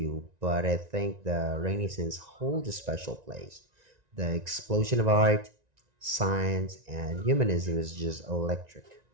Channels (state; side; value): late; left; 1.9 ms